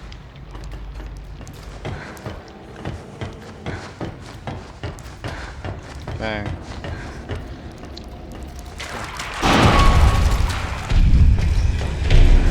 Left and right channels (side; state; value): both; identical; correlation 1.00